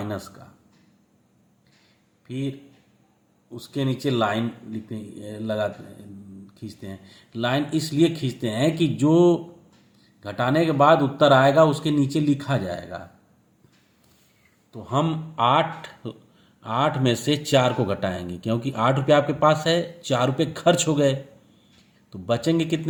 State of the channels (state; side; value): identical; both; correlation 1.00